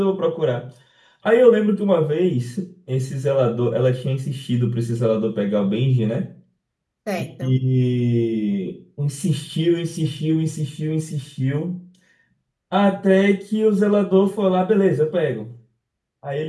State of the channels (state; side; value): identical; both; correlation 1.00